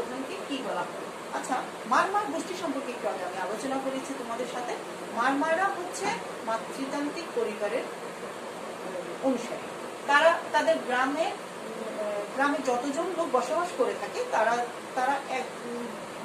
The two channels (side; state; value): both; identical; correlation 1.00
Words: কি বলা হয়। আচ্ছা, মারমার গোষ্ঠী সম্পর্কে একটু আগে আমি আলোচনা করেছি তোমাদের সাথে। মারমারা হচ্ছে মাতৃতান্ত্রিক পরিবারের অনুসারী। তারা তাদের গ্রামে যতজন লোক বসবাস করে থাকে তারা এক